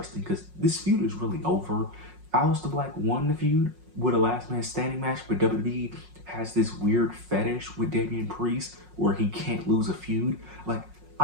because this feud is really over. Aleister Black won the feud with a last man standing match, but WWE has this weird fetish with Damian Priest where he can't lose a feud. Like,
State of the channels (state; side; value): late; left; 5.5 ms